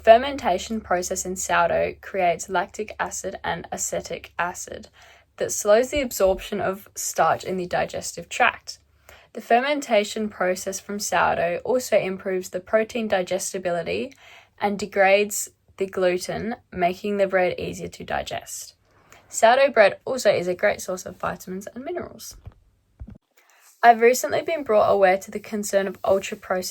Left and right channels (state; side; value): identical; both; correlation 1.00